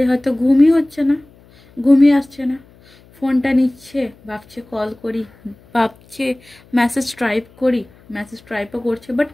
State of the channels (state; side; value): noise; left; hum, 27 dB below the sound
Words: হয়তো ঘুমই আসছে না, ফোনটা নিচ্ছে, ভাবছে কল করি, ভাবছে মেসেজ টাইপও করছে, বাট